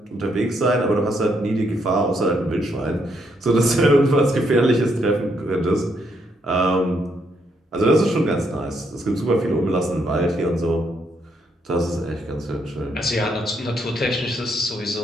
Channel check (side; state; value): both; normal; correlation 0.75